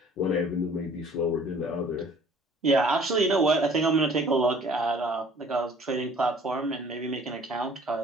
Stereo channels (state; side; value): normal; both; correlation 0.53